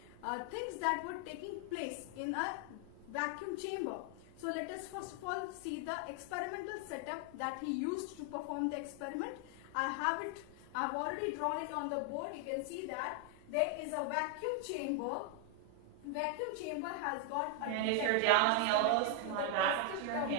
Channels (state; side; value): different; both; correlation 0.00